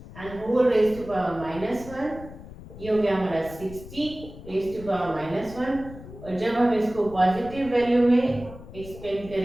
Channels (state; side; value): noise; left; rumble, 15 dB below the sound